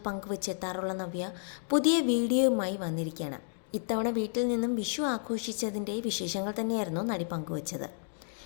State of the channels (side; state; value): right; silent; digital silence